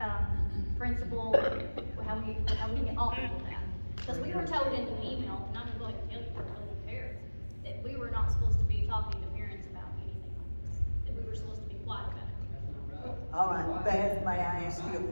principal, how we get off of that. Because we were told in the email, and I'm gonna go ahead and tell you, we're told the parents, that we were not supposed to be talking to parents about anything like this, that we were supposed to be quiet about it. All right, Beth, may I ask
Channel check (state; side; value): inverted; both; correlation -1.00